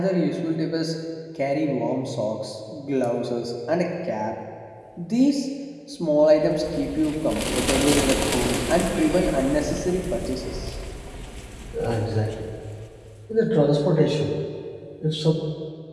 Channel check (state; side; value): identical; both; correlation 1.00